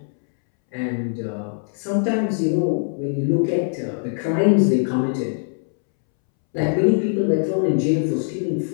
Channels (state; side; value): silent; right; 64 dB below the other